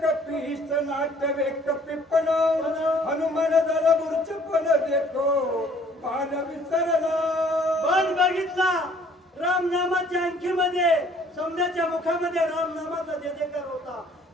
कपीश नाट्य कपिपण. हनुमान झाला मूर्छपण देखो बाण विसरला. बाण बघितला राम नामाच्या अंकीमध्ये, समजाच्या मुखामध्ये राम नामाचा जयजयकार होता.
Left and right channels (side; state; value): both; normal; correlation 0.58